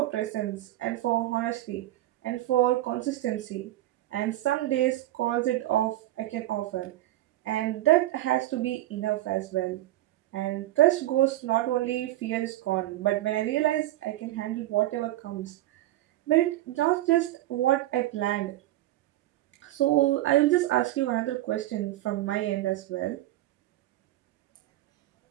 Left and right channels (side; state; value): left; quieter; 15.5 dB